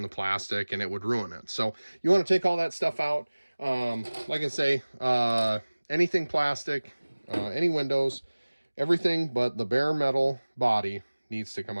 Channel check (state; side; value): inverted; both; correlation -1.00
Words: the plastic, and it would ruin it. So you want to take all that stuff out. Like I say, anything plastic, any windows, everything but the bare metal body needs to come